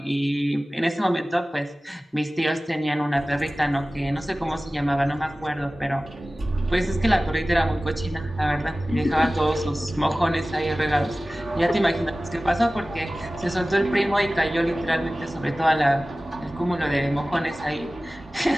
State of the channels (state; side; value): normal; both; correlation 0.97